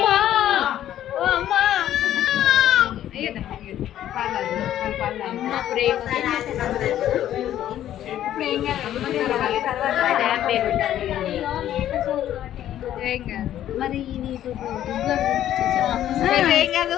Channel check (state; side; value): quieter; right; 11.8 dB